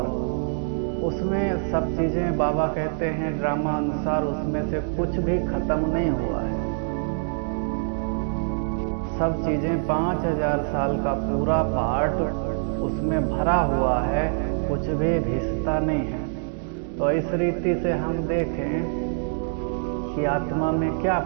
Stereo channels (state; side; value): silent; left; digital silence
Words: उसमें सब चीज़ें, बाबा कहते हैं ड्रामा अनुसार, उसमें से कुछ भी खत्म नहीं हुआ है। सब चीज़ें 5000 साल का पूरा पार्ट उसमें भरा हुआ है, कुछ भी घिसता नहीं है। तो इस रीति से हम देखें कि आत्मा में क्या